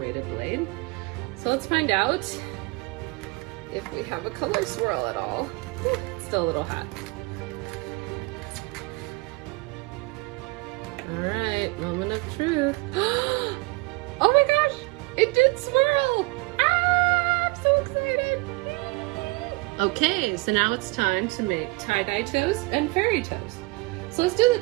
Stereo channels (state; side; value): quieter; left; 25.2 dB